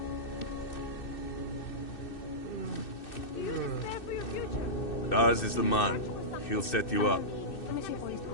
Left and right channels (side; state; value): right; late; 2.6 ms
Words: Daz is the man. He'll set you up.